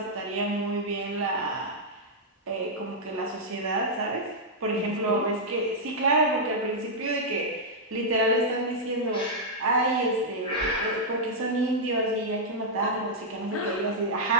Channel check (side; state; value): both; normal; correlation -0.06